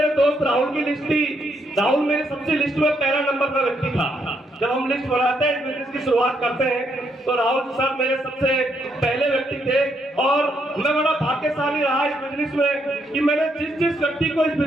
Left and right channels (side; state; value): both; normal; correlation 0.75